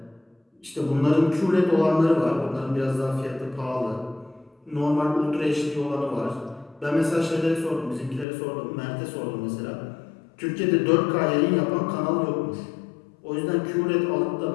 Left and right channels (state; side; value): drops out; right; at 8.2 s